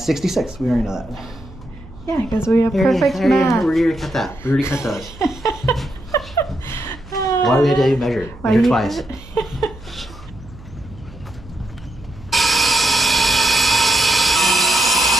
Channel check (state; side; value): noise; right; hum, 19 dB below the sound